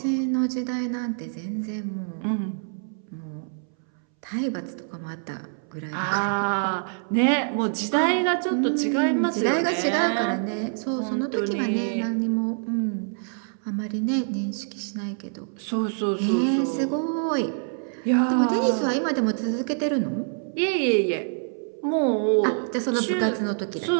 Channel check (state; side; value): silent; left; 61 dB below the other